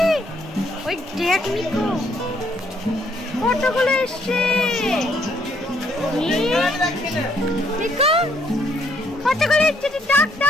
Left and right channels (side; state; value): both; normal; correlation 0.69